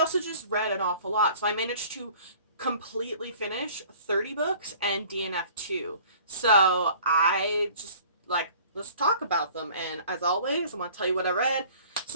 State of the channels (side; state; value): both; inverted; correlation -0.50